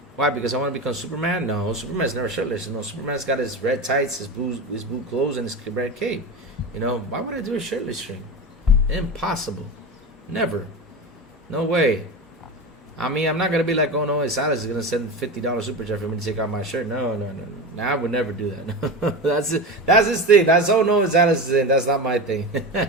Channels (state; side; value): normal; both; correlation 0.25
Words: Why? Because I want to become Superman? No, Superman's never shirtless. Superman's got his red tights, his blue clothes, and his red cape. Why would I do a shirtless stream? Impossible. Never. No way. I mean, I'm not going to be like, oh, no, Salas is going to send $50 super chat for me to take out my shirt. No. I would never do that. That's his thing. That's, oh, no, Salas is in. That's not my thing.